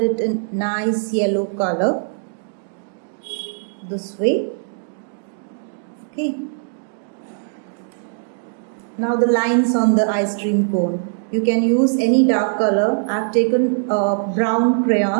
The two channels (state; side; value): silent; left; digital silence